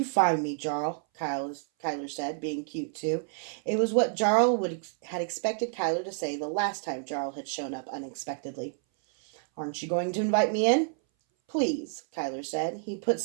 find me, Jarl?" Kyler said, being cute too. It was what Jarl had expected Kyler to say the last time Jarl had shown up unexpectedly. "Aren't you going to invite me in?" "Please," Kyler said. He put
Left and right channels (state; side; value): silent; left; 58 dB below the other